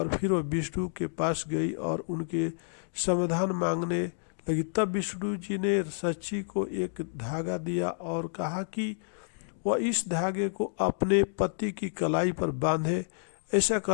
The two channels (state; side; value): silent; right; digital silence